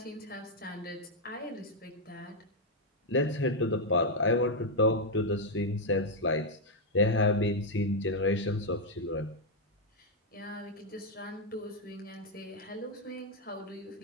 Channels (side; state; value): both; normal; correlation -0.01